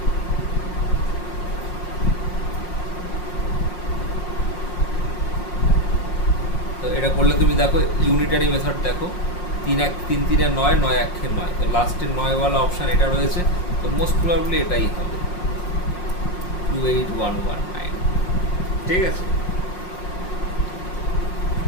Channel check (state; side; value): late; right; 5.6 ms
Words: তো এটা করলে তুমি দেখো ইউনিটারি মেথড দেখো, 3 1 3 3 9, 9 1 9, তো লাস্টের 9 ওয়ালা অপশান এটা রয়েছে, তো মোস্ট প্রবাবলি এটাই হবে 28119। ঠিক আছে,